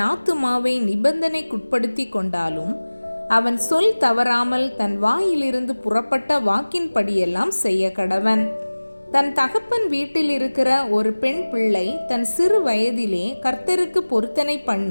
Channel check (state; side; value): inverted; both; correlation -1.00